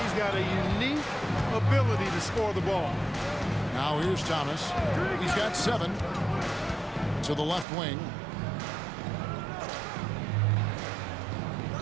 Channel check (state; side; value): drops out; left; at 7.7 s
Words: He's got a unique ability to score the ball. Now here's Thomas. He's got 7 to the left wing.